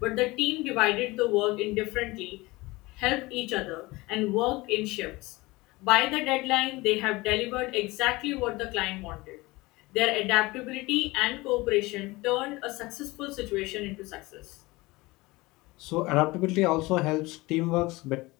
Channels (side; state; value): right; quieter; 21.7 dB